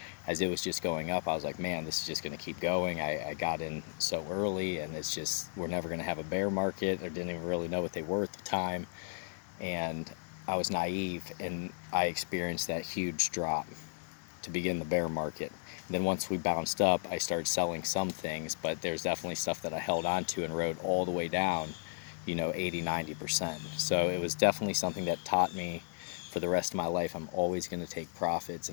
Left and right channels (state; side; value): silent; right; digital silence